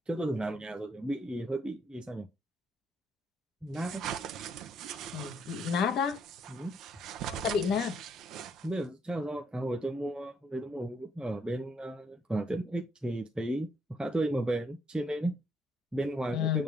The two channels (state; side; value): normal; both; correlation 0.71